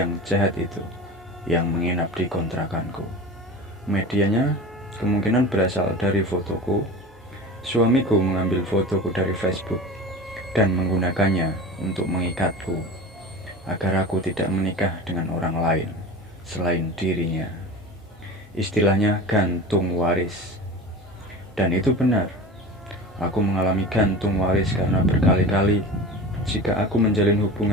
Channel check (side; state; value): both; normal; correlation 0.33